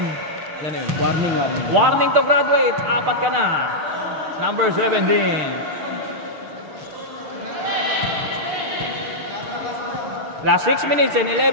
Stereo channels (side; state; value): left; late; 6.5 ms